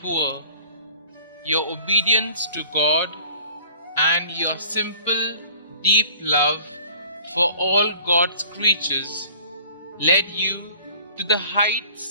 poor, your obedience to God and your simple, deep love for all God's creatures led you to the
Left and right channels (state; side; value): inverted; both; correlation -0.50